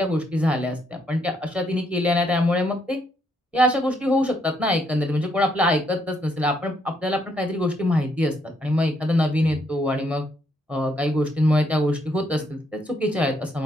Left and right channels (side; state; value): both; normal; correlation 0.74